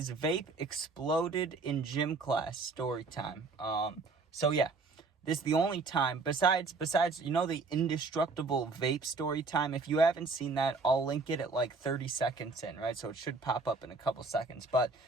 vape exploded in gym class story time. So yeah, this is the only time besides the indestructible vape story time. If you haven't seen that, I'll link it at like 30 seconds in, right? So it should pop up in a couple seconds. But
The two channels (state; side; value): quieter; left; 4.0 dB